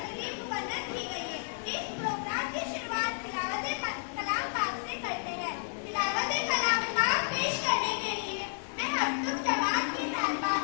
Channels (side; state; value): right; silent; digital silence